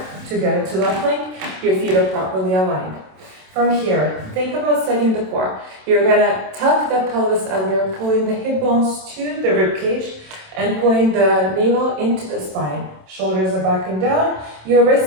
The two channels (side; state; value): left; late; 27 ms